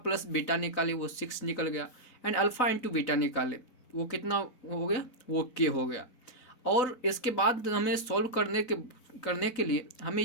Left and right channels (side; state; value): right; late; 4.0 ms